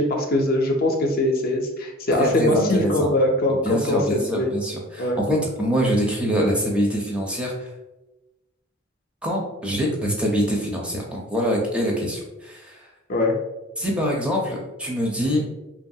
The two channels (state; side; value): normal; both; correlation 0.44